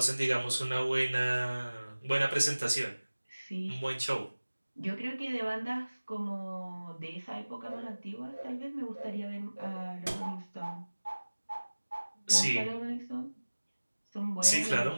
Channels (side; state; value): both; inverted; correlation -1.00